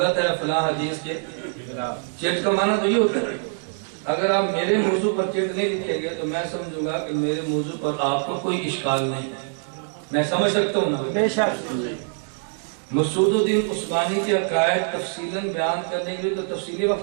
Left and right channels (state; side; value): silent; left; digital silence